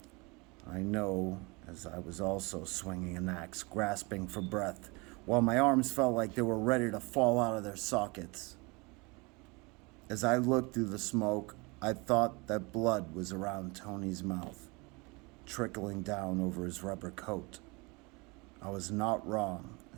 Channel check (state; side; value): quieter; left; 27.5 dB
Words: I know, as I was also swinging an axe, grasping for breath, while my arms felt like they were ready to fall out of their sockets. As I looked through the smoke, I thought that blood was around Tony's mouth, trickling down over his rubber coat. I was not wrong,